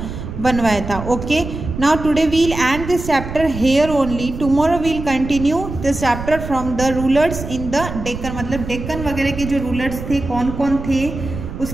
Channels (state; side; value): noise; right; rumble, 8 dB below the sound